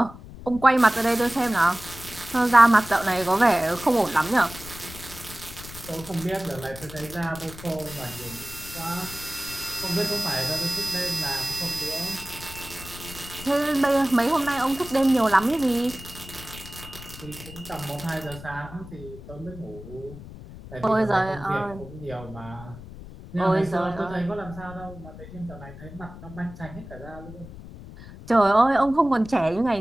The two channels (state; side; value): noise; left; rumble, 15 dB below the sound